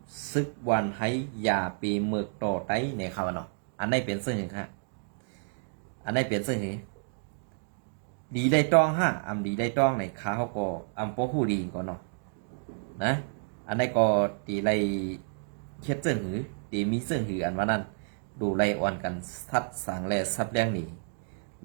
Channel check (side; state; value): left; silent; digital silence